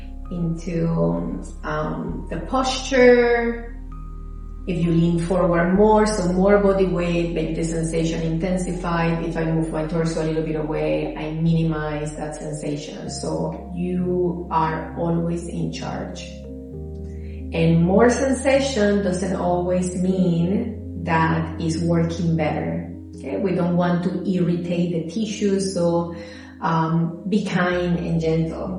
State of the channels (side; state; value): both; identical; correlation 1.00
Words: the posture? If you lean forward more, so more body weight, maybe the sensation intensified. If I move my torso a little bit away, I minimize that sensation. So you are always in charge. And more sensation doesn't always mean that it's working better. Okay, we don't want to irritate the tissues, so be kind and